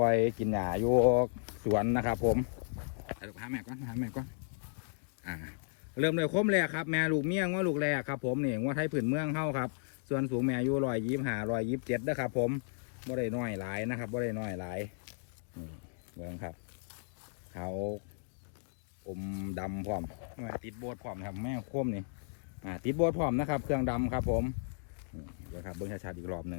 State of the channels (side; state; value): right; silent; digital silence